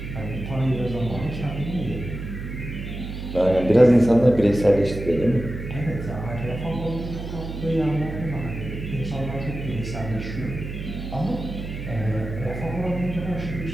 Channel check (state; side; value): noise; right; hum, 7 dB below the sound